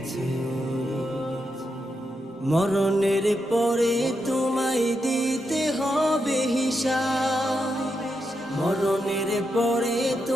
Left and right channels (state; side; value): normal; both; correlation 0.85